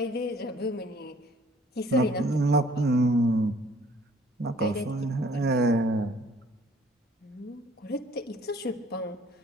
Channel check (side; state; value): both; normal; correlation 0.57